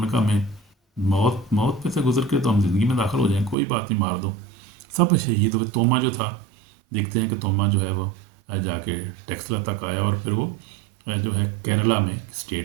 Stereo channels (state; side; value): drops out; left; at 3.6 s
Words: نے کہا میں موت پہ سے گزر کے تو ہم زندگی میں داخل ہو جائیں، کوئی بات نہیں، مار دو. سب شہید ہوئے. توما جو تھا، دیکھتے ہیں کہ توما جو ہے وہ جا کے ٹیکسلا تک آیا، اور پھر وہ جو ہے کیرلا میں